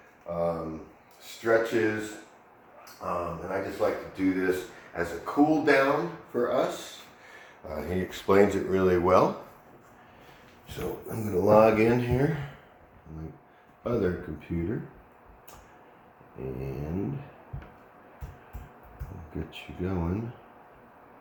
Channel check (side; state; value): both; identical; correlation 1.00